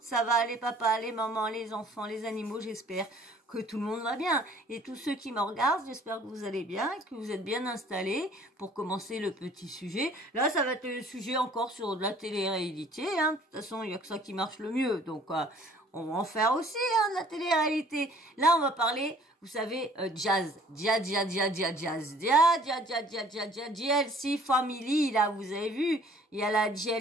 va, les papas, les mamans, les enfants, les animaux, j'espère que tout le monde va bien. Et tous ceux qui me regardent, j'espère que vous allez bien, que vous êtes bien installés pour commencer le petit sujet. Là, ça va être le sujet encore sur de la télé-réalité, hein. De toute façon, il n'y a que ça qui marche le mieux, donc on va en faire aussi, hein, de la télé-réalité. Là, on va parler, vous savez, jazz. JLC Family, là, vous avez vu, il y a la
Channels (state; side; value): normal; both; correlation 0.55